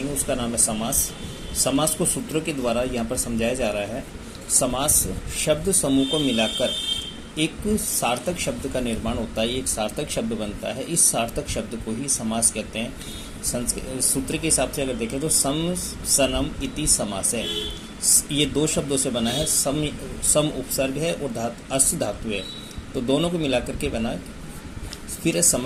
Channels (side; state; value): both; identical; correlation 1.00